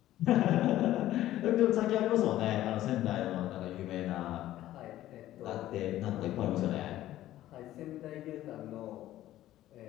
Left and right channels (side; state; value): right; quieter; 14.1 dB